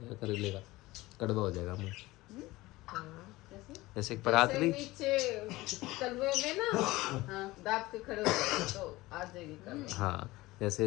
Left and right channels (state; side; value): quieter; right; 19.4 dB